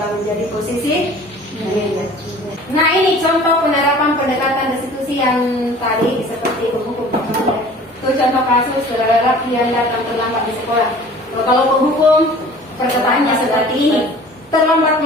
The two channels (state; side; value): normal; both; correlation 0.46